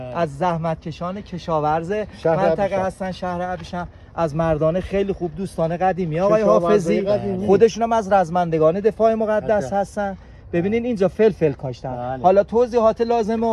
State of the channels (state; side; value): identical; both; correlation 1.00